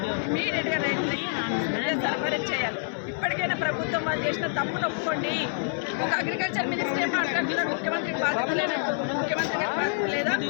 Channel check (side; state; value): right; silent; 60 dB below the other